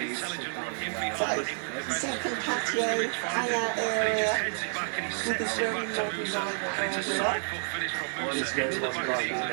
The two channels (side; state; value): left; silent; 57 dB below the other